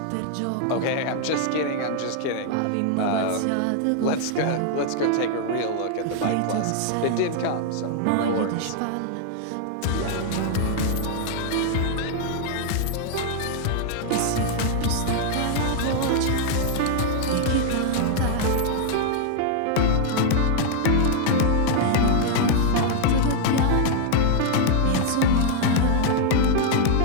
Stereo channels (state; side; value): different; both; correlation 0.00